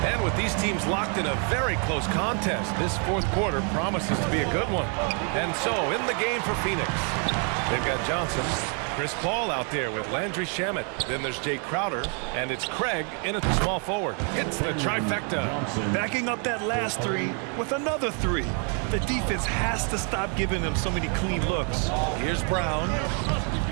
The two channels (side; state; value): left; quieter; 39.6 dB